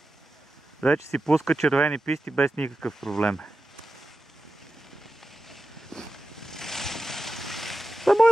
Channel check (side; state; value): both; normal; correlation 0.92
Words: Вече си пуска червени писти без никакъв проблем. Това